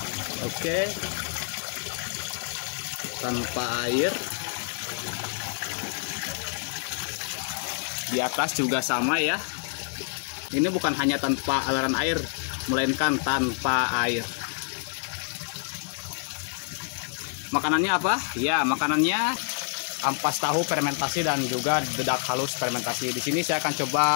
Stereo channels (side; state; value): right; silent; 60 dB below the other